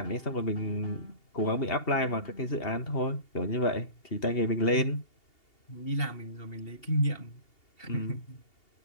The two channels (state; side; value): late; right; 2.8 ms